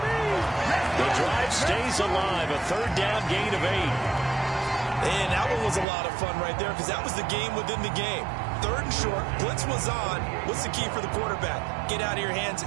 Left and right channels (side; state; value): left; drops out; at 5.9 s